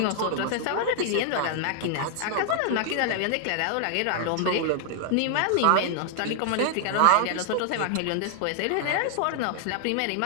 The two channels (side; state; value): both; different; correlation -0.01